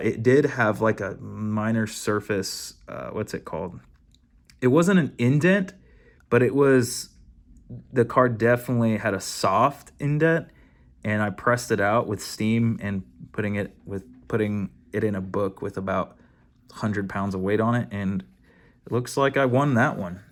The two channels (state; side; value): identical; both; correlation 1.00